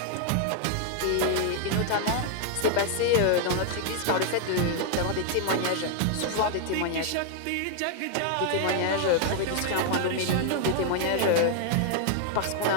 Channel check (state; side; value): different; both; correlation 0.00